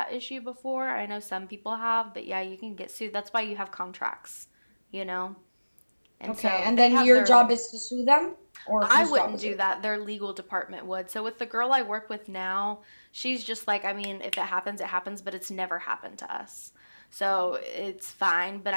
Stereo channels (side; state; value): both; inverted; correlation -1.00